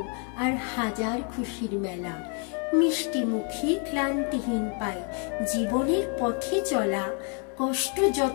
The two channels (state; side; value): quieter; right; 39.2 dB